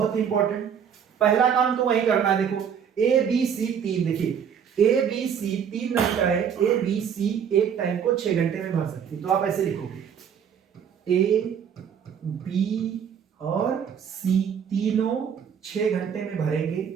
ही इंपॉर्टेंट। पहला काम तो वही करना है। देखो ए बी सी 3, देखिए A B C 3 नलिकाएं A B C एक टाइम को 6 घंटे में भर सकती है। तो आप ऐसे लिखोगे ए बी और सी तीनों 6 घंटे में भरेंगे,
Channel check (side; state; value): left; quieter; 7.8 dB